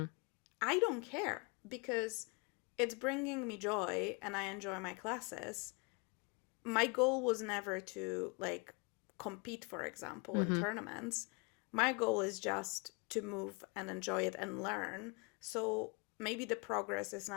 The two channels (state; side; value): quieter; right; 32.1 dB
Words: I don't care because it's bringing me joy and I enjoy my classes. My goal was never to like compete, for example, in Mm-hmm. tournaments. My goal is just to move and enjoy it and learn. So maybe the progress is